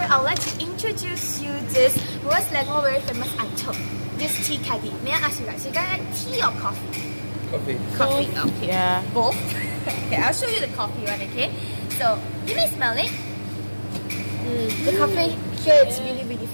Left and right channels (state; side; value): inverted; both; correlation -1.00